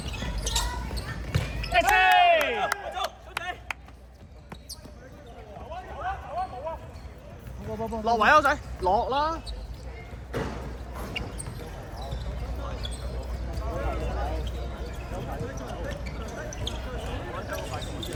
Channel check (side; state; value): both; identical; correlation 1.00